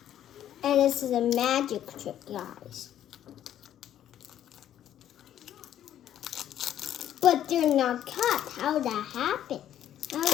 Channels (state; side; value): quieter; right; 11.1 dB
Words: And this is a magic trick, guys. But they're not cut. How did that happen? How